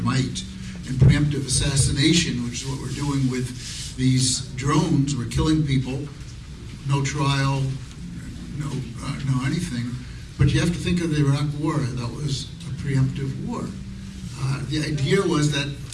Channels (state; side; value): identical; both; correlation 1.00